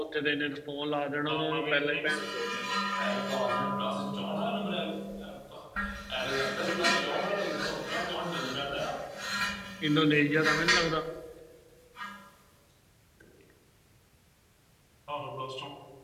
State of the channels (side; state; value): both; identical; correlation 1.00